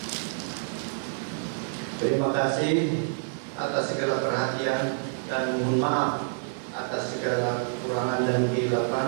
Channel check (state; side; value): silent; left; digital silence